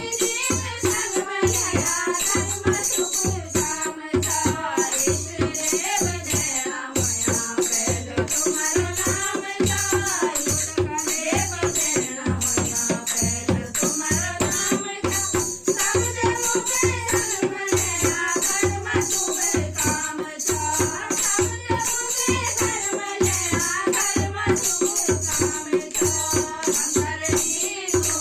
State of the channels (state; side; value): identical; both; correlation 1.00